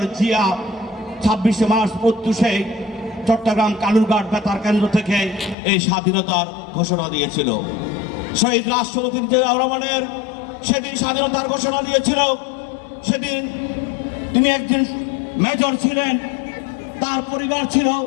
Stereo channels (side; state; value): right; drops out; at 5.6 s